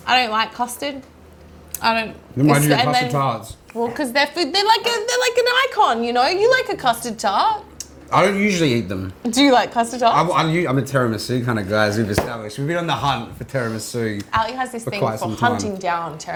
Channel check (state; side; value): identical; both; correlation 1.00